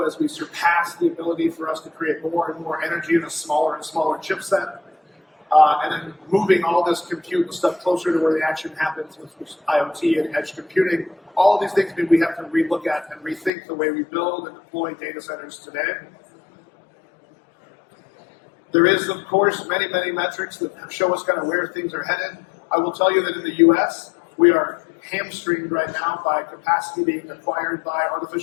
as we surpass the ability for us to create more and more energy in a smaller and smaller chipset. And then moving all this compute and stuff closer to where the action happens with IoT and edge computing. All of these things mean we have to relook at and rethink the way we build and deploy data centers today. There is, of course, many metrics that show us kind of where things are headed. I will tell you that in the US, we are hamstringed right now by capacity being acquired by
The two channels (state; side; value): drops out; right; at 13.5 s